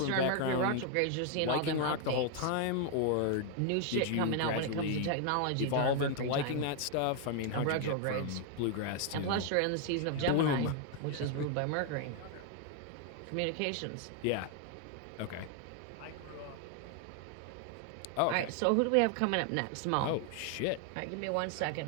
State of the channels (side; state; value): both; different; correlation 0.00